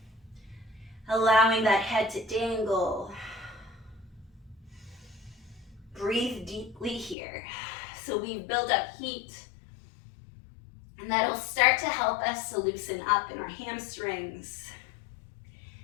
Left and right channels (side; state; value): right; drops out; at 7.2 s